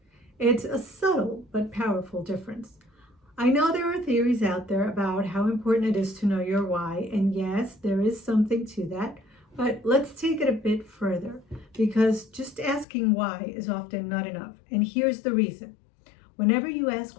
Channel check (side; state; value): right; drops out; at 12.9 s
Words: It's a subtle but powerful difference. I know there are theories out there about how important it is to know your why, and yes, there is something to that, but let's take it a bit further, because just asking why is often not enough, and here's the reason. Whenever you